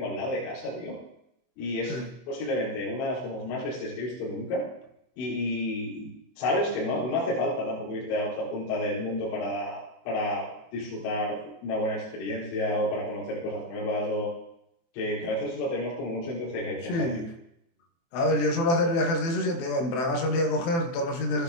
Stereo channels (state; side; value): late; right; 24 ms